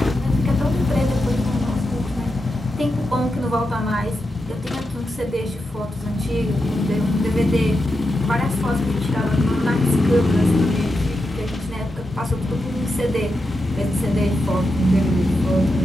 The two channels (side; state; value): both; normal; correlation 0.87